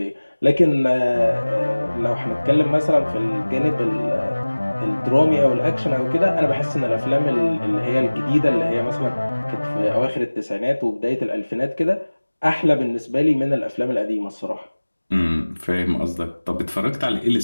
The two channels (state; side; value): inverted; both; correlation -1.00